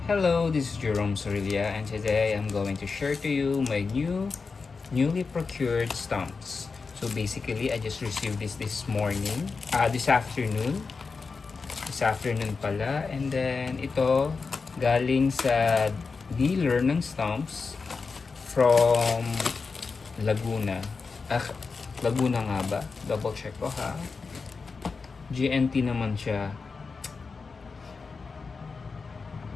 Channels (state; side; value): quieter; right; 4.7 dB